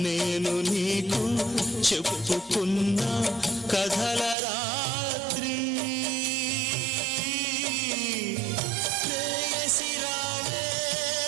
నేను నీకు చెప్పుకున్న కథల రాత్రి. ప్రేయసి రావే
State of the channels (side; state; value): left; drops out; at 4.4 s